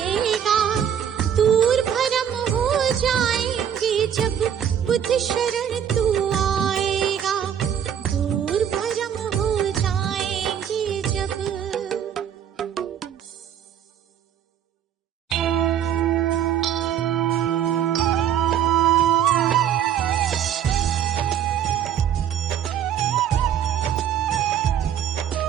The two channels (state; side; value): quieter; left; 9.3 dB